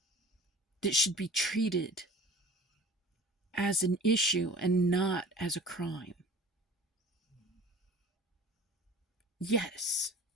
that should be treated as an issue and not as a crime. Yes,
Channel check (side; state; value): both; normal; correlation 0.43